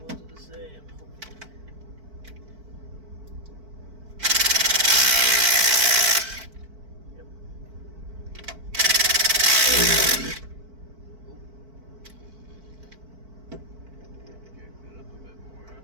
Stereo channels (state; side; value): late; left; 4.5 ms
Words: are the same.